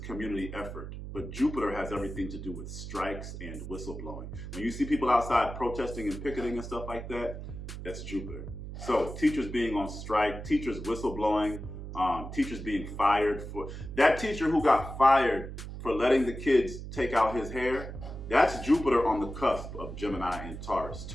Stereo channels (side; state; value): right; noise; hum, 9 dB below the sound